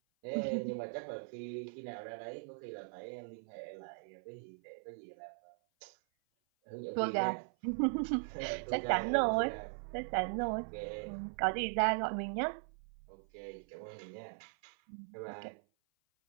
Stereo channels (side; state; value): left; silent; 52 dB below the other